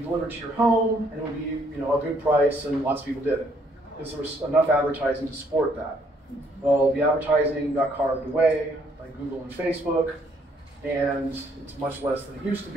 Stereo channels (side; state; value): both; normal; correlation 0.68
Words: delivered to your home, and it would be a good price, and lots of people did it because there was enough advertising to support that. Well, the advertising got carved away by Google and Facebook, and it's much less than it used to